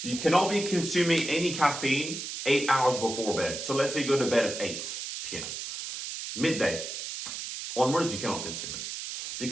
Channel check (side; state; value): right; noise; hiss, 6 dB below the sound